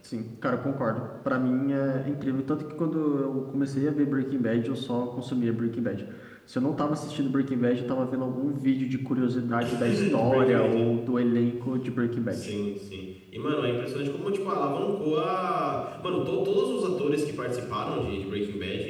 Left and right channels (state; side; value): identical; both; correlation 1.00